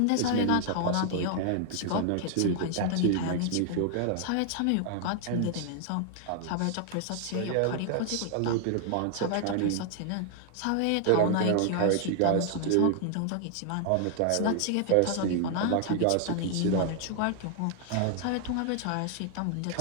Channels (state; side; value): different; both; correlation 0.00